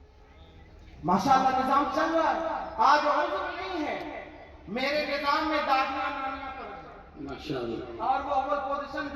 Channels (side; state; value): both; identical; correlation 1.00